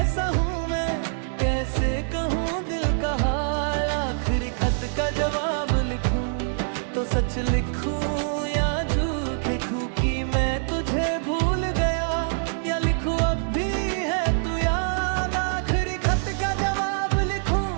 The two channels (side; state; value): left; silent; digital silence